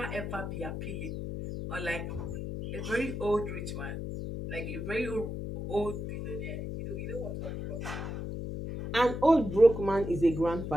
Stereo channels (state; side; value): noise; left; hum, 5 dB below the sound